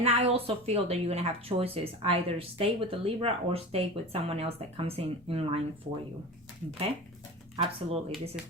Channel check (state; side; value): normal; both; correlation 0.31